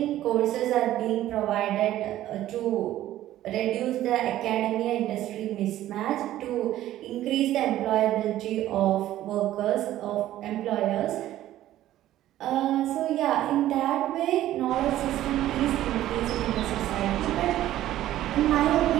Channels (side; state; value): left; quieter; 13.6 dB